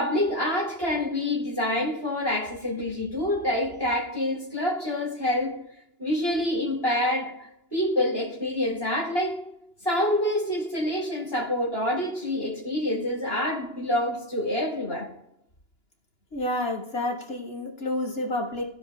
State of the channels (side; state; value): right; late; 2.9 ms